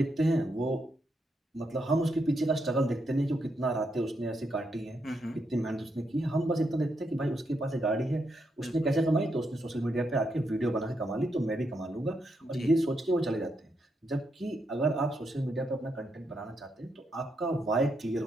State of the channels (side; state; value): both; normal; correlation 0.81